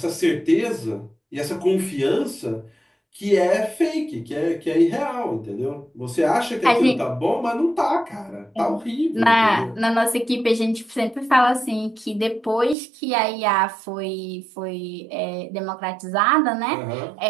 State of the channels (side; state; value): left; drops out; at 12.8 s